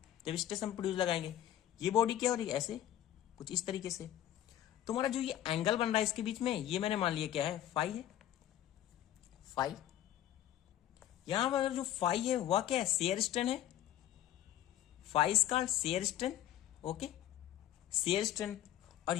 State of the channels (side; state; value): right; quieter; 12.3 dB